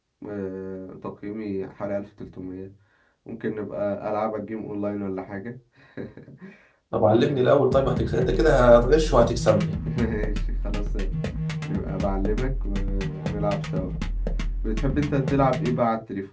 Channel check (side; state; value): both; identical; correlation 1.00